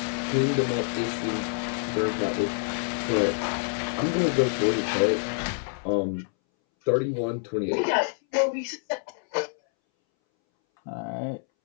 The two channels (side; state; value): right; silent; 60 dB below the other